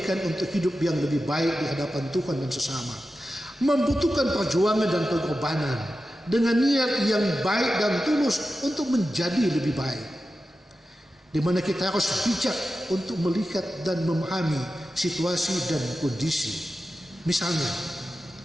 untuk hidup yang lebih baik di hadapan Tuhan dan sesama. Membutuhkan perjuangan dan pengorbanan dengan niat yang baik dan tulus untuk menjadi lebih baik, di mana kita harus bijak untuk melihat dan memahami situasi dan kondisi. Misalnya,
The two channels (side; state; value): both; normal; correlation 0.92